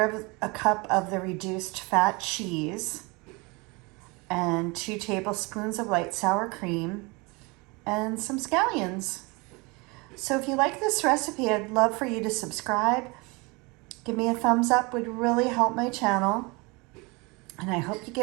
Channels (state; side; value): quieter; left; 26.9 dB